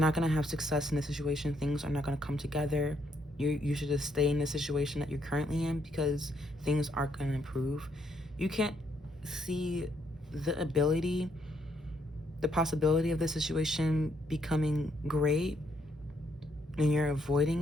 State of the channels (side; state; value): both; normal; correlation 0.74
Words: going to have success in this situation, things are not going to come together. You should just stay in the situation that you're currently in, because things aren't going to improve. You can't see the ability, the possibility of the situation becoming great, and you're